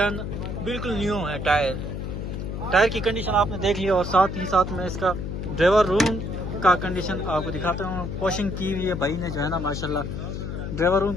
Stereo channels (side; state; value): left; noise; hum, 5 dB below the sound